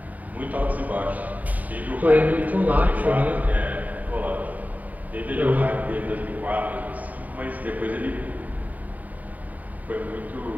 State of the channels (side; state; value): left; late; 0.076 ms